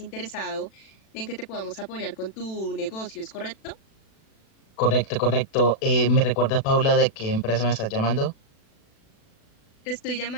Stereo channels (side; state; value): right; late; 36 ms